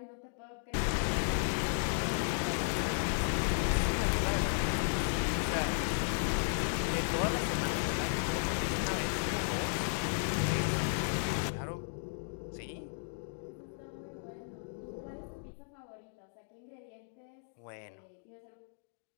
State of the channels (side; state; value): right; silent; digital silence